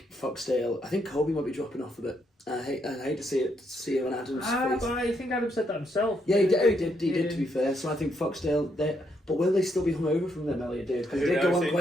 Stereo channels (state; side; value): normal; both; correlation 0.76